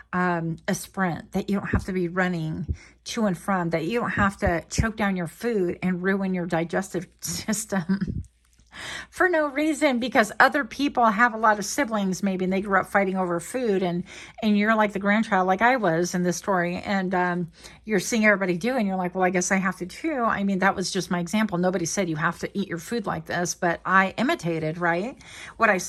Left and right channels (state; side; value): identical; both; correlation 1.00